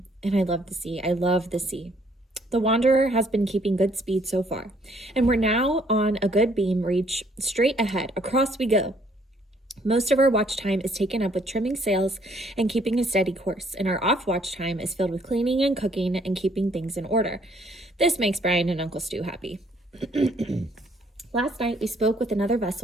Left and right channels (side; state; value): both; normal; correlation 0.65